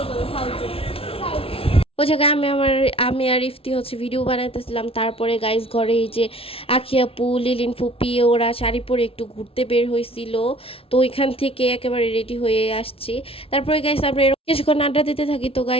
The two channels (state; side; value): late; right; 0.27 ms